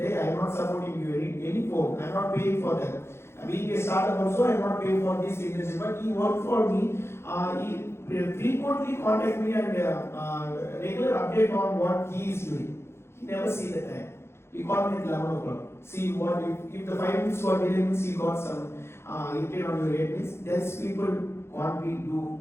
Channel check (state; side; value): late; right; 0.12 ms